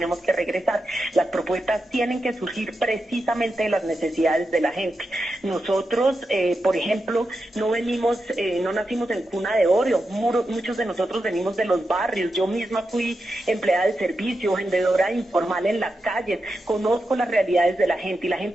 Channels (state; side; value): normal; both; correlation 0.88